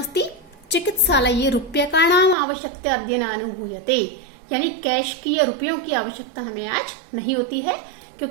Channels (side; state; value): left; drops out; at 2.4 s